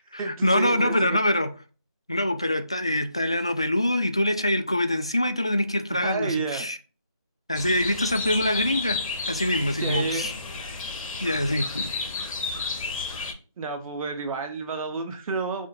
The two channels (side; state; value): both; inverted; correlation -0.72